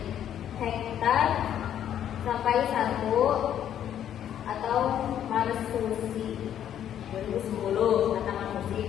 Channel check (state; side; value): quieter; right; 10.2 dB